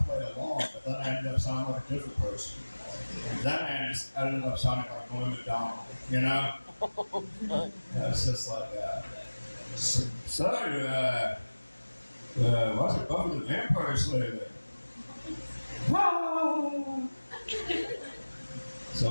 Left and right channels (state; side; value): inverted; both; correlation -1.00